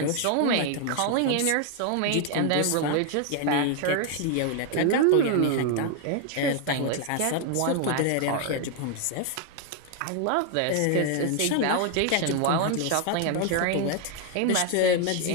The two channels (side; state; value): both; different; correlation 0.00